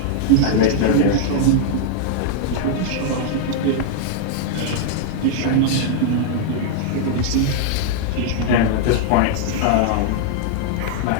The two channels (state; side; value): different; both; correlation -0.01